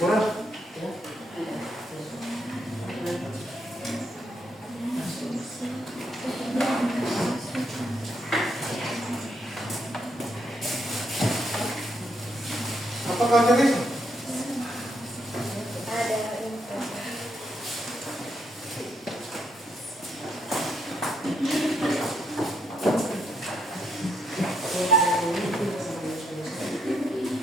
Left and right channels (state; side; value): normal; both; correlation 0.77